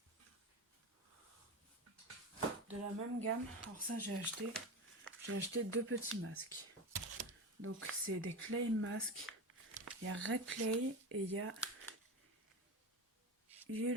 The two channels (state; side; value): normal; both; correlation 0.23